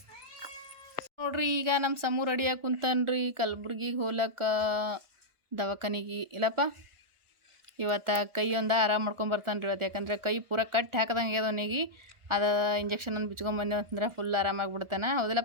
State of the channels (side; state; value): left; late; 1.3 ms